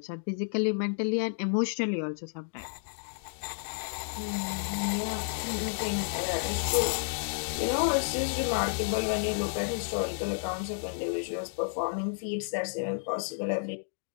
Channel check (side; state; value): right; silent; digital silence